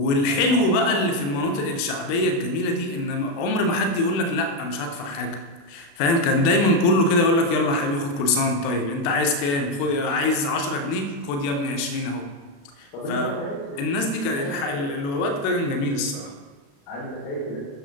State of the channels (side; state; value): right; late; 35 ms